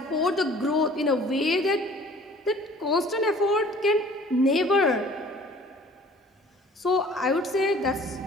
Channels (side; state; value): both; normal; correlation 0.51